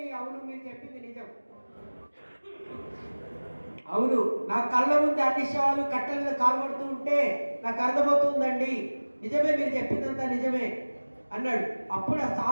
అవును, మీరు చెప్పింది నిజం. అవును, నా కళ్ళ ముందు అన్ని శవాలు కట్టెల మీద కాల్పడుతూ ఉంటే నాకు అర్థమవుతుందండి. నిజమే, మీరు చెప్పిందంతా నిజమే అన్నాడు. అప్పుడు ఆ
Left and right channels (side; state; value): both; inverted; correlation -1.00